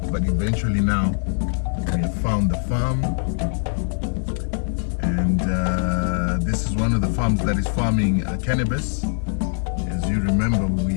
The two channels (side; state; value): right; silent; digital silence